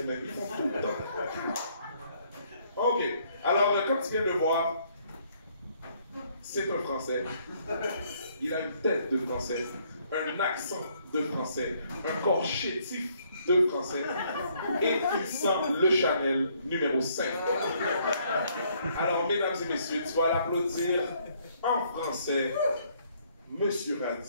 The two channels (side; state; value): both; inverted; correlation -0.67